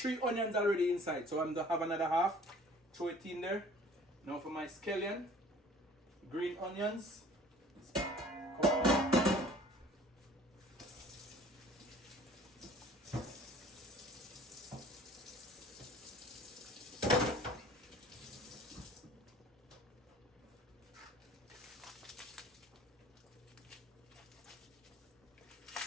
onions already inside, so I'm gonna have another half. Throw it in there. Now for my scallion, green onions.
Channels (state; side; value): normal; both; correlation 0.50